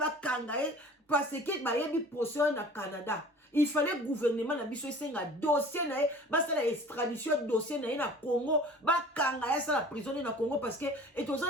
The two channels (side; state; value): both; normal; correlation 0.45